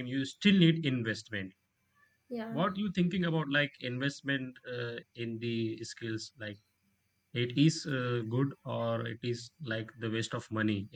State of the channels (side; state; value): both; identical; correlation 1.00